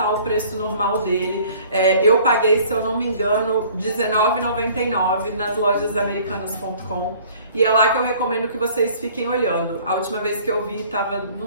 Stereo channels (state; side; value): inverted; both; correlation -0.53